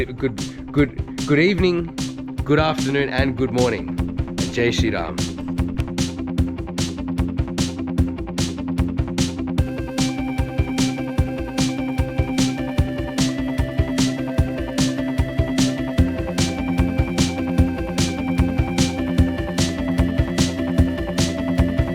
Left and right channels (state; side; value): identical; both; correlation 1.00